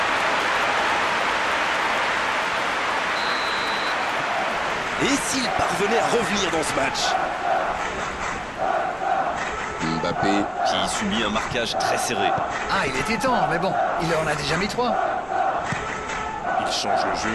Et s'il parvenait à revenir dans ce match? Mbappé qui subit un marquage très serré. Ah, il était temps, mais bon, il en a déjà mis 3. Il change le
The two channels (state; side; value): identical; both; correlation 1.00